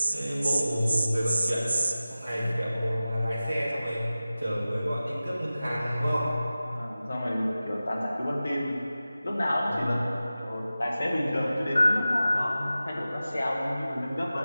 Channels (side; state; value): both; inverted; correlation -0.96